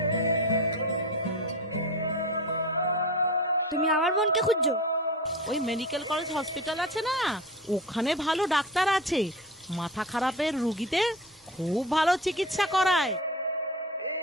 তুমি আমার বোনকে খুঁজছো? ওই মেডিকেল কলেজ হসপিটাল আছে না, ওখানে ভালো ডাক্তার আছে, মাথা খারাপের রুগীদের খুব ভালো চিকিৎসা করায়।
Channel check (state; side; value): normal; both; correlation 0.30